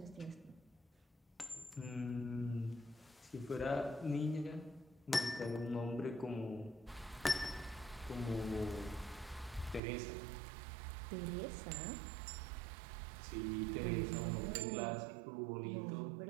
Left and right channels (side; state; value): left; drops out; at 9.8 s